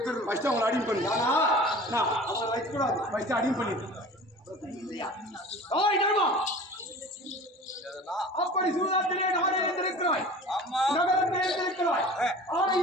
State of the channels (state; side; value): normal; both; correlation 0.41